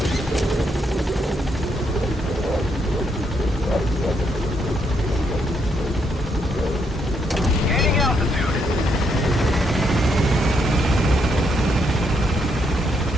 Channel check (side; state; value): both; normal; correlation 0.76